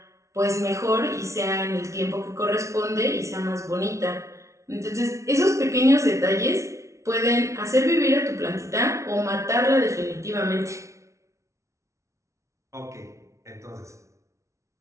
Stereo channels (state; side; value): late; left; 0.14 ms